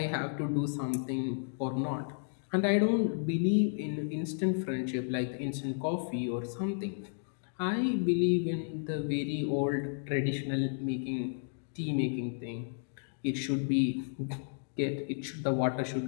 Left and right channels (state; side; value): silent; right; digital silence